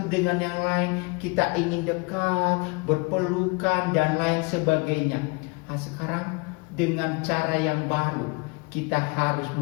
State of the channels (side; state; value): right; quieter; 29.1 dB